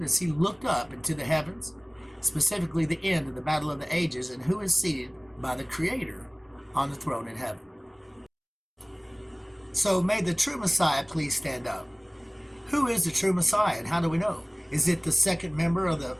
as he looked up into the heavens, specifically the end of the battle of the ages, and who is seated by the Creator on the throne in heaven. So may the true Messiah please stand up. Who is the true Messiah, and how do we know? Is it the second member of the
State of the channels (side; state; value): both; identical; correlation 1.00